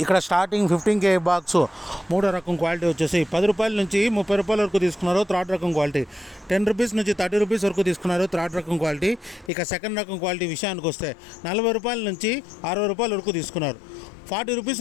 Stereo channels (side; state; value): right; drops out; at 9.5 s